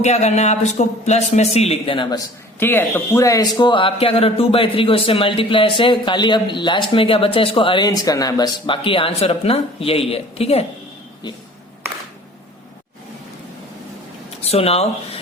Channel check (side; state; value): both; normal; correlation 0.47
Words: करना है, आप इसको प्लस में c लिख देना बस, ठीक है। तो पूरा इसको आप क्या करो, 2/3 को इससे मल्टीप्लाई से, खाली अब लास्ट में क्या बचा इसको अरेंज करना है बस, बाकी आंसर अपना यही है, ठीक है। So now